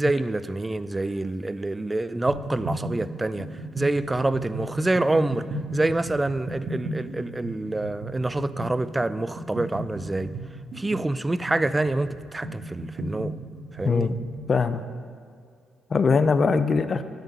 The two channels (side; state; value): both; normal; correlation 0.90